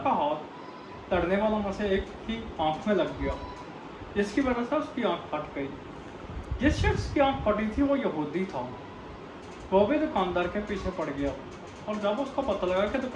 हाथ लड़ने वालों में से एक की आंख में लग गया, जिसकी वजह से उसकी आंख फट गई। जिस शख्स की आंख फटी थी वो यहूदी था। वो भी दुकानदार के पीछे पड़ गया, और जब उसको पता लगा कि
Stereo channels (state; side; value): identical; both; correlation 1.00